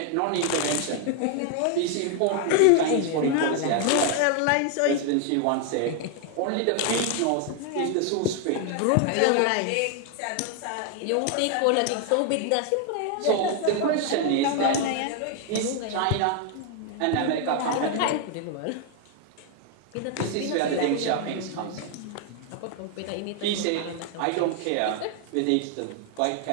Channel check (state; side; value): different; both; correlation 0.00